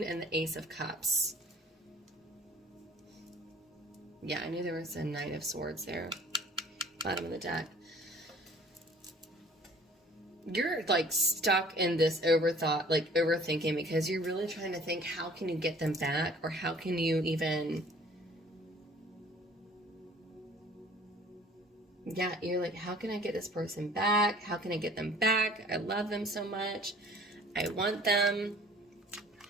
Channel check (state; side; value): normal; both; correlation 0.51